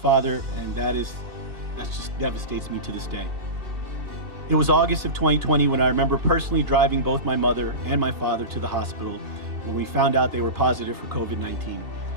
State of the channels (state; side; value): late; left; 2.7 ms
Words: and that just devastates me to this day. It was August of 2020 when I remember personally driving both my mother and my father to the hospital when we found out they were positive for COVID-19